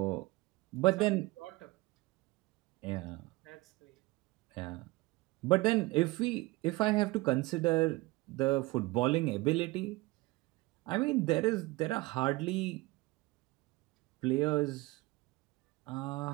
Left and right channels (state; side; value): quieter; left; 21.7 dB